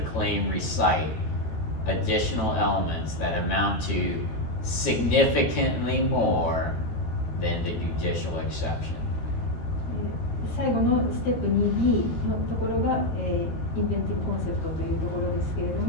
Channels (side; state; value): right; late; 13 ms